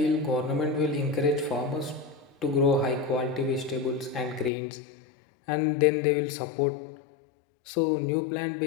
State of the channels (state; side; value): drops out; right; at 4.5 s